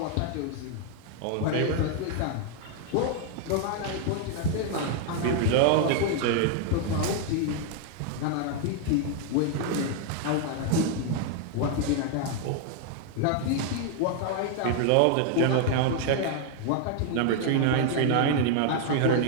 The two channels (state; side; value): different; both; correlation 0.00